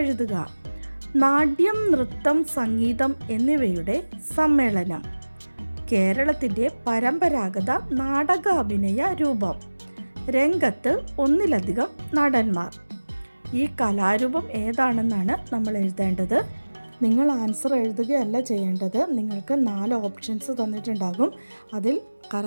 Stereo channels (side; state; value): both; inverted; correlation -1.00